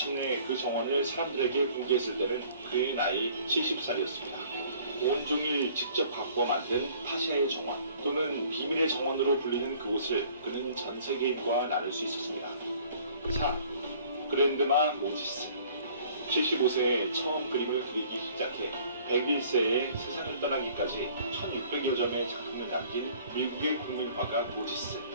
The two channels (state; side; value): inverted; both; correlation -0.54